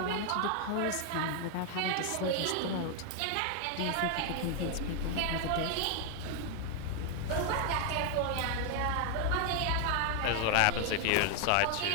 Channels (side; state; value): both; different; correlation 0.00